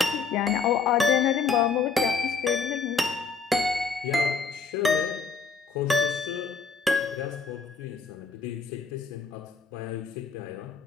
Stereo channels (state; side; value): quieter; right; 5.0 dB